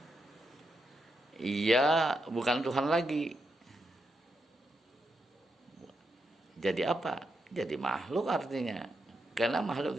ia bukan Tuhan lagi. Jadi apa? Jadi makhluk artinya. Karena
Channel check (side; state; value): both; normal; correlation 0.83